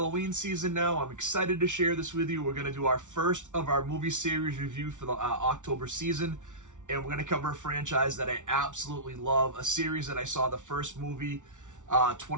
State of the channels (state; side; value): late; left; 0.86 ms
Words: season now. I'm excited to share this with you. We're going to do our first of our movie series review for the October season, and we're going to cover a franchise that I absolutely love, a series that I saw the first movie